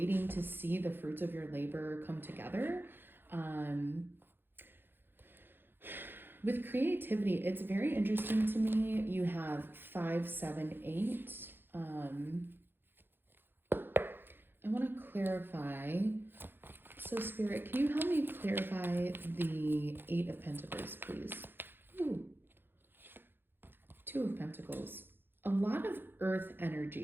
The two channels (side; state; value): left; late; 0.10 ms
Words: to see the fruits of your labor come together. With creativity, it's very interesting to me. You have 5, 7, 8. I want to clarify. So Spirit, can you help me clarify the 8 of Pentacles, please? Ooh. 2 of Pentacles. A lot of earth